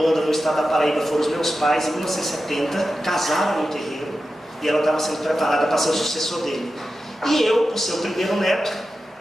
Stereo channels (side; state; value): both; normal; correlation 0.92